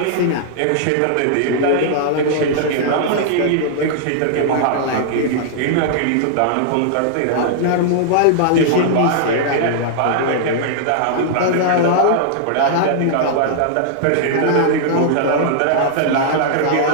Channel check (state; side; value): different; both; correlation -0.01